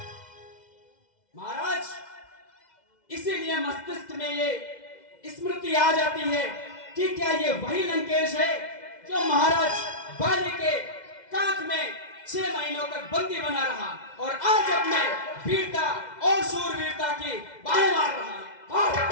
महाराज, इसीलिए मस्तिष्क में ये स्मृति आ जाती है कि क्या ये वही लंकेश है जो महाराज बाली के कांख में 6 महीनों तक बंदी बना रहा और आज अपने वीरता और शूरवीरता की बाहें मार रहा है।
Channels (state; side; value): late; right; 2.0 ms